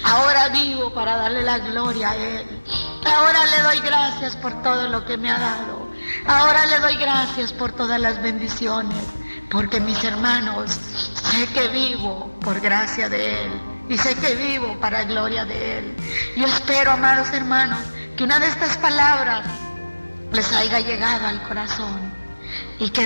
Ahora vivo para darle la gloria a Él. Ahora le doy gracias por todo lo que me ha dado. Ahora le doy gracias por todas las bendiciones. Porque mis hermanos, sé que vivo por gracia de Él y sé que vivo para gloria de Él. Yo espero, amados hermanos, que una de estas palabras les haya llegado al corazón y que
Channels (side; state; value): both; inverted; correlation -1.00